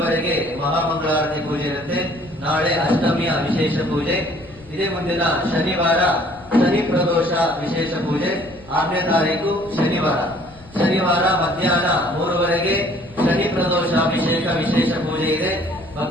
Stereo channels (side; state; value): left; noise; rumble, 22 dB below the sound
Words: ಮಹಾಮಂಗಳಾರತಿ ಪೂಜೆ ಇರುತ್ತೆ. ನಾಳೆ ಅಷ್ಟಮಿಯ ವಿಶೇಷ ಪೂಜೆ. ಇದೇ ಮುಂದಿನ ಶನಿವಾರ ಶನಿ ಪ್ರದೋಷ ವಿಶೇಷ ಪೂಜೆ, 6ನೇ ತಾರೀಕು ಶನಿವಾರ ಮಧ್ಯಾಹ್ನ 3 ಶನಿ ಪ್ರದೋಷ ಅಭಿಷೇಕ ವಿಶೇಷ ಪೂಜೆ ಇದೆ.